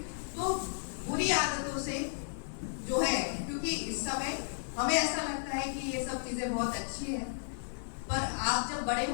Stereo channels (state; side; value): silent; right; digital silence